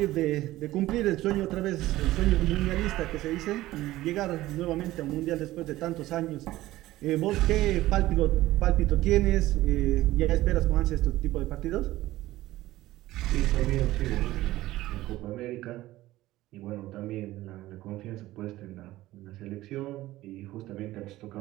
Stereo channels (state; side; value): quieter; left; 16.4 dB